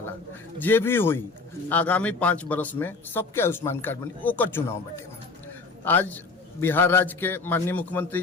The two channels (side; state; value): right; quieter; 4.0 dB